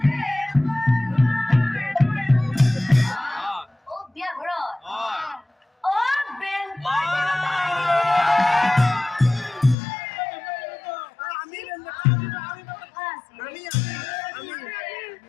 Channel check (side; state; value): right; drops out; at 9.8 s